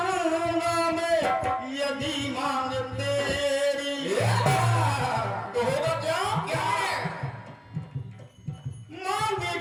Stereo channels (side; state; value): both; identical; correlation 1.00